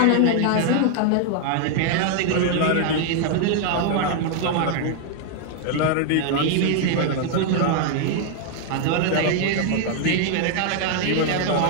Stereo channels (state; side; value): different; both; correlation 0.00